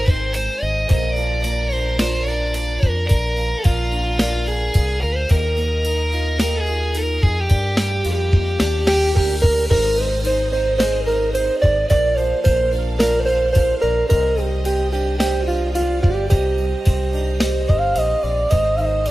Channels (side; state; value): both; normal; correlation 0.95